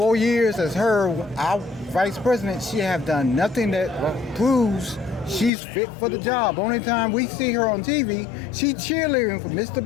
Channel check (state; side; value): drops out; right; at 5.5 s